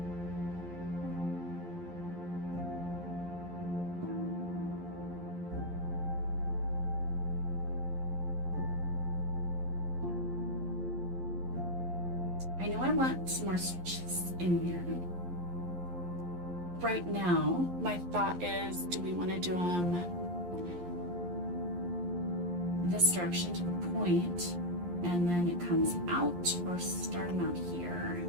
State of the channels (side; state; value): left; late; 11 ms